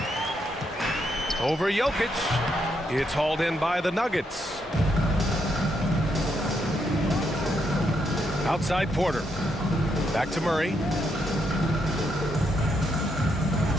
Over Jokic. It's hauled in by the Nuggets. Outside Porter. Back to Murray.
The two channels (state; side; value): normal; both; correlation 0.78